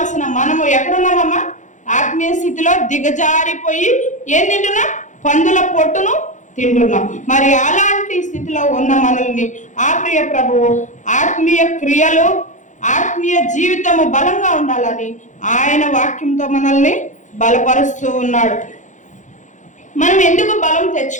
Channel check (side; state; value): right; late; 0.36 ms